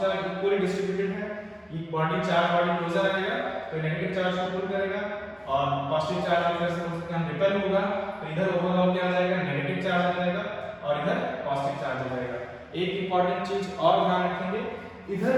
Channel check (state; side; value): identical; both; correlation 1.00